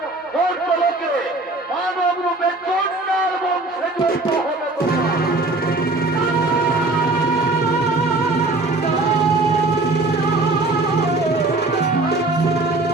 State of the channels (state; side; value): quieter; left; 3.0 dB